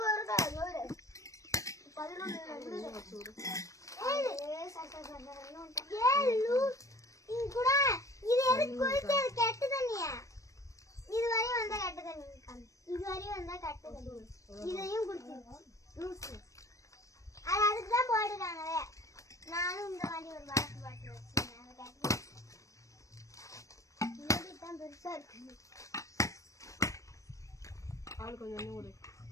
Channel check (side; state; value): right; late; 0.16 ms